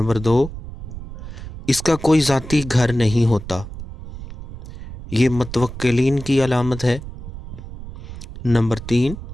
2، اس کا کوئی ذاتی گھر نہیں ہوتا، یہ متوکلین کی علامت ہے۔ نمبر 3،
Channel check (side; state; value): right; noise; rumble, 12 dB below the sound